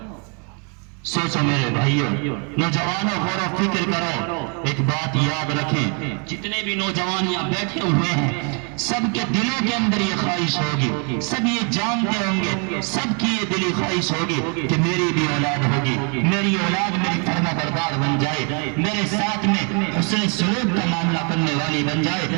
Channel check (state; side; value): quieter; left; 37.5 dB